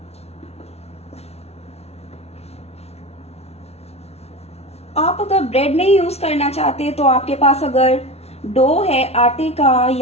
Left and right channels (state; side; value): late; right; 0.31 ms